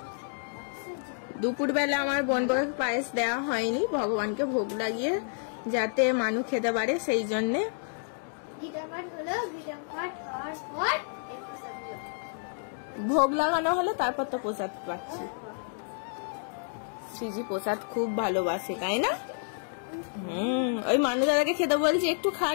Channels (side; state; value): right; silent; digital silence